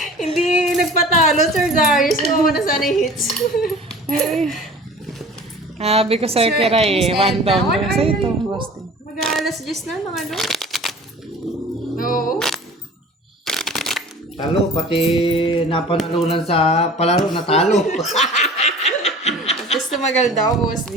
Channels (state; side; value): normal; both; correlation 0.43